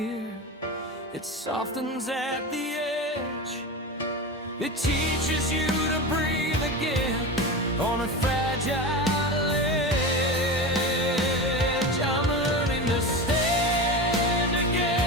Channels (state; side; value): normal; both; correlation 0.25